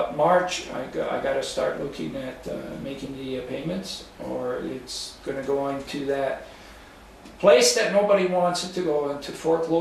March I got to start looking at making the payments, or it's going to go into that place that nobody wants it to go into,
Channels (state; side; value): identical; both; correlation 1.00